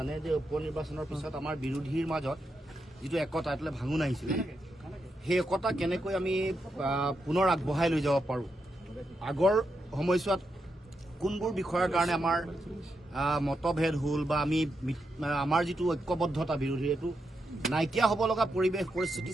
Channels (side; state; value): both; normal; correlation 0.84